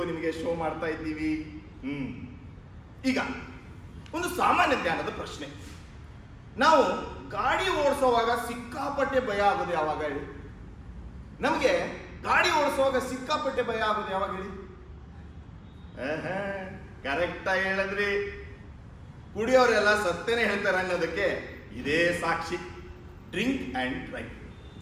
ನಿಮಗೆ ಶೋ ಮಾಡ್ತಾ ಇದ್ದೀವಿ. ಈಗ ಒಂದು ಸಾಮಾನ್ಯ ಜ್ಞಾನದ ಪ್ರಶ್ನೆ. ನಾವು ಗಾಡಿ ಓಡಿಸೋವಾಗ ಸಿಕ್ಕಾಪಟ್ಟೆ ಭಯ ಆಗೋದು ಯಾವಾಗ ಹೇಳಿ? ನಮಗೆ ಗಾಡಿ ಓಡಿಸುವಾಗ ಸಿಕ್ಕಾಪಟ್ಟೆ ಭಯ ಆಗೋದು ಯಾವಾಗ ಹೇಳಿ? ಕರೆಕ್ಟಾಗಿ ಹೇಳಿದ್ರಿ. ಕುಡಿಯೋರೆಲ್ಲ ಸತ್ತೇನೆ ಹೇಳ್ತಾರೆ ಅನ್ನೋದಕ್ಕೆ ಇದೇ ಸಾಕ್ಷಿ. Drink and drive.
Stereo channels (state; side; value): identical; both; correlation 1.00